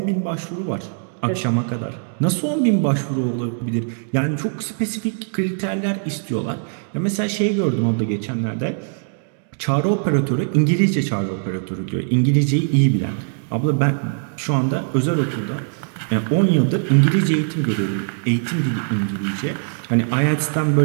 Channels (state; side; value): silent; left; digital silence